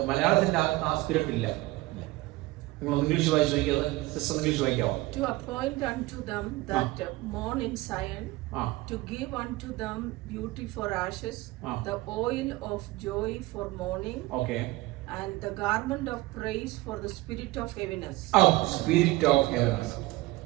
മലയാളത്തിന്റെ ആ സ്പിരിറ്റ് ഇല്ല. English വായിക്കാമോ? To appoint unto them that mourn in Zion, to give unto them beauty for ashes, the oil of joy for mourning, and the garment of praise for the spirit of heaviness. Spirit of heaviness.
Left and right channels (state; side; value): quieter; left; 19.7 dB